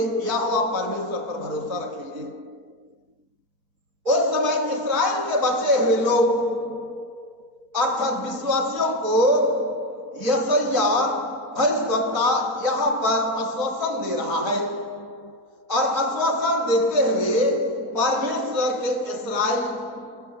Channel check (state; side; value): late; left; 4.1 ms